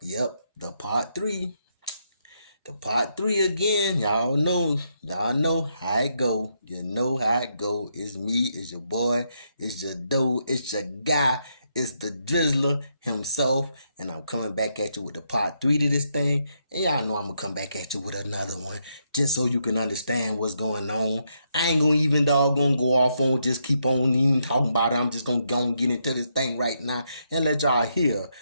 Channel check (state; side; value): inverted; both; correlation -0.78